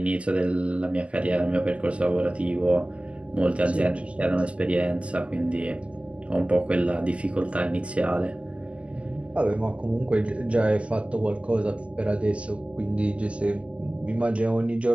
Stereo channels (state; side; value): late; left; 0.062 ms